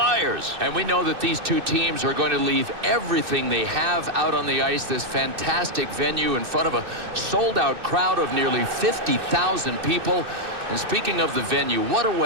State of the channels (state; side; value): late; left; 2.6 ms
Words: And we know that these two teams are going to leave everything they have out on the ice. This fantastic venue in front of a sold-out crowd of nearly 50,000 people. And speaking of the venue, what a